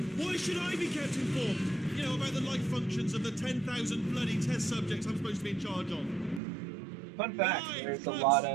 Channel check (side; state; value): left; drops out; at 6.4 s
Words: Why should I be kept informed? You know, about the life functions of the 10,000 bloody test subjects I'm supposed to be in charge of. Fun fact, Right, there's a close. lot